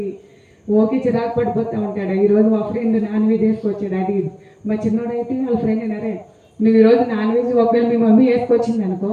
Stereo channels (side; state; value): both; identical; correlation 1.00